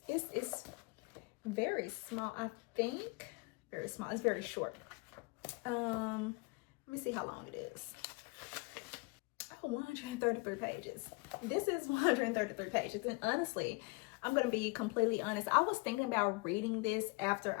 very small, I think. Very small. It's very short. Let me see how long it is. 133 pages. This is 133 pages. And honestly, I'm going to be completely honest. I was thinking about reading this after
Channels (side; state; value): right; quieter; 27.5 dB